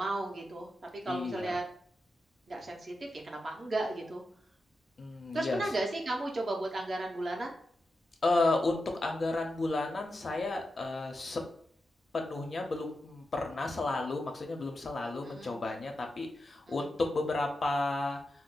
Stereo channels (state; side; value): normal; both; correlation 0.89